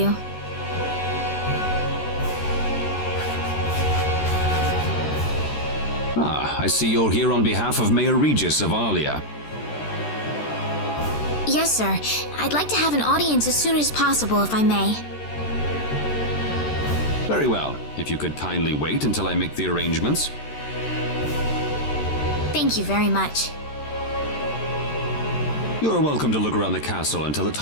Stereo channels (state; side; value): late; right; 13 ms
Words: Ah, I see you're here on behalf of Mayor Regis of Alia. Yes, sir. I'd like to have an audience as soon as possible, if I may. Very well. If you could kindly wait until I make the arrangements. Thank you very much. You're welcome to look around the castle until the